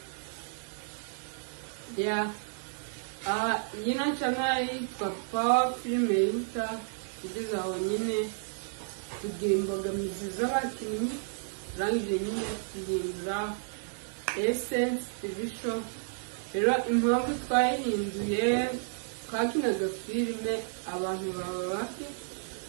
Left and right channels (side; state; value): left; silent; digital silence